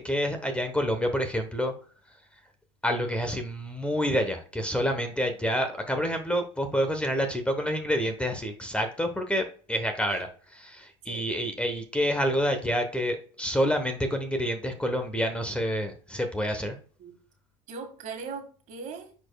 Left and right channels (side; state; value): both; normal; correlation 0.71